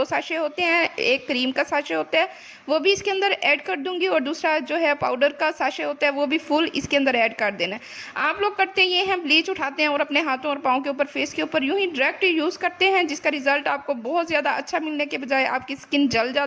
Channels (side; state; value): both; identical; correlation 1.00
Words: साशे होते हैं, एक क्रीम का साशे होता है वो भी इसके अंदर ऐड कर दूंगी और दूसरा जो है पाउडर का साशे होता है वो भी फुल इसके अंदर ऐड कर देना है। आप लोग करते ये हैं, ब्लीच उठाते हैं और अपने हाथों और पाँव के ऊपर, फेस के ऊपर यूं ही डायरेक्ट यूज़ करते हैं, जिसका रिजल्ट आपको बहुत ज़्यादा अच्छा मिलने के बजाय आपकी स्किन जल